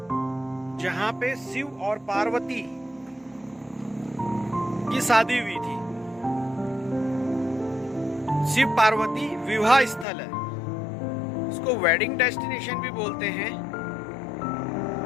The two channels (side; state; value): right; drops out; at 10.1 s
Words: जहाँ पे शिव और पार्वती की शादी हुई थी। शिव पार्वती विवाह स्थल है, इसको वेडिंग डेस्टिनेशन भी बोलते हैं।